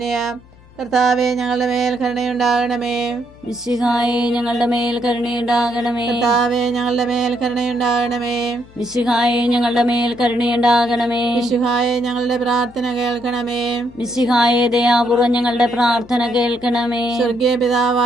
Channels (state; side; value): noise; left; hum, 25 dB below the sound